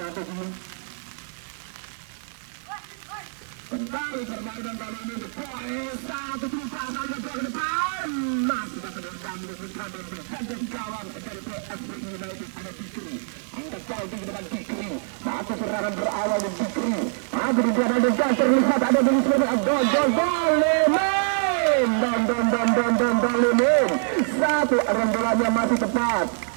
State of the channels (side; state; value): left; silent; digital silence